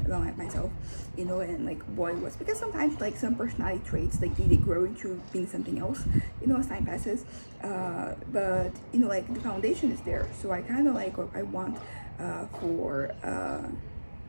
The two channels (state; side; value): inverted; both; correlation -1.00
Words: about myself, and like what it was, because sometimes like some personality traits like they grow into being something else, as time passes. But like the foundation is there, so I kind of like what I want for